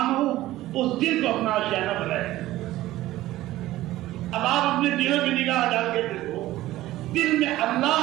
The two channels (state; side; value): quieter; left; 15.8 dB